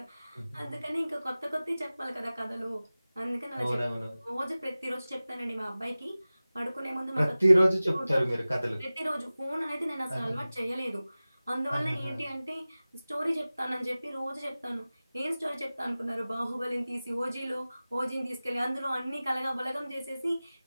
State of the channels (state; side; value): inverted; both; correlation -0.97